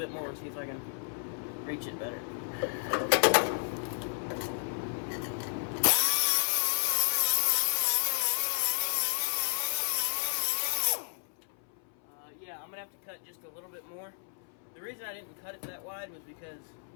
more and see if I can reach it better. Yeah, I'm gonna have to cut just a little bit more. The reason I didn't cut it that wide was because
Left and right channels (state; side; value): silent; right; 56 dB below the other